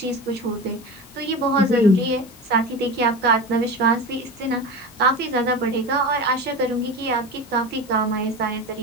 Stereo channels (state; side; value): normal; both; correlation 0.27